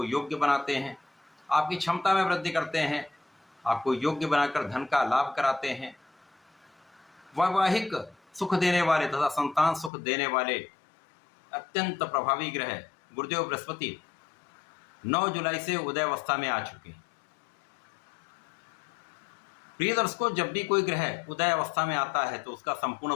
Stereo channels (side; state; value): right; drops out; at 9.9 s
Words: योग्य बनाते हैं, आपकी क्षमता में वृद्धि करते हैं, आपको योग्य बनाकर धन का लाभ कराते हैं, वैवाहिक सुख देने वाले तथा संतान सुख देने वाले अत्यंत प्रभावी ग्रह गुरुदेव बृहस्पति 9 जुलाई से उदय अवस्था में आ चुके हैं। प्रिय दर्शकों, जब भी कोई ग्रह उदय अवस्था में आता है तो उसका संपूर्ण